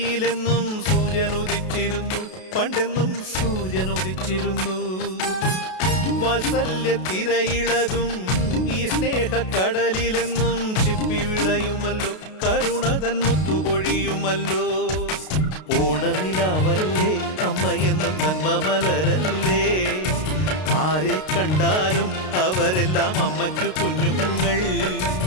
സൂര്യൻ ഉദിച്ചിരുന്നു, പണ്ടെന്നും സൂര്യൻ ഉദിച്ചിരുന്നു. വാത്സല്യ തിരയിളകും ഈ സ്നേഹക്കടലിലെന്നും ചിപ്പി വിളയുമല്ലോ, കരുണതൻ മുത്തുപൊഴിയുമല്ലോ. ഓണനിലാവല്ലേ അമ്മയെന്നും നന്മ മലരല്ലേ, ആരെ കണ്ടാലും അവരെല്ലാം അമ്മയ്ക്കു കുഞ്ഞുങ്ങൾ.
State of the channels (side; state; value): right; late; 32 ms